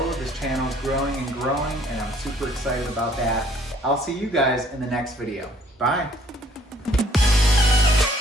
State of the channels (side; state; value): both; normal; correlation 0.60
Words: This channel is growing and growing, and I'm super excited about that. I'll see you guys in the next video. Bye.